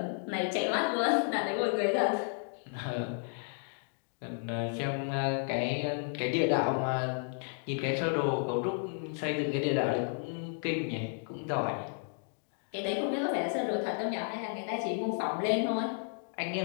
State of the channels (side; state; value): right; silent; 56 dB below the other